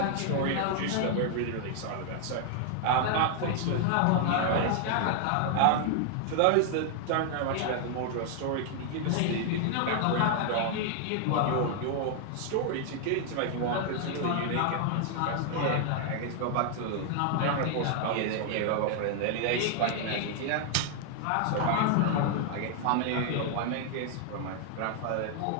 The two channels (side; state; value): both; different; correlation 0.00